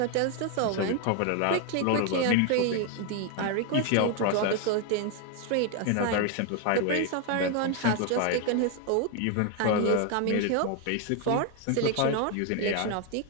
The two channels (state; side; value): different; both; correlation 0.01